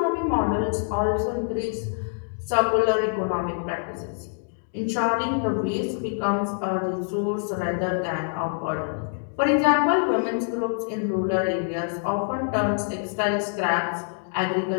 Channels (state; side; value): silent; right; digital silence